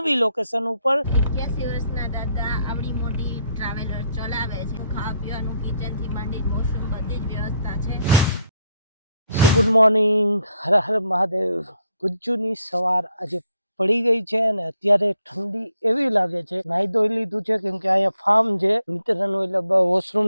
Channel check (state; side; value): inverted; both; correlation -0.74